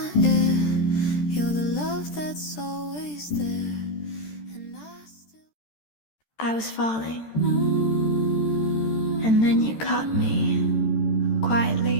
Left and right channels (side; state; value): right; late; 13 ms